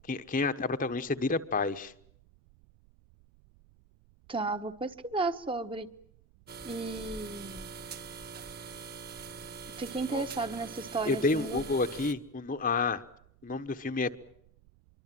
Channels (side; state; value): right; noise; rumble, 27 dB below the sound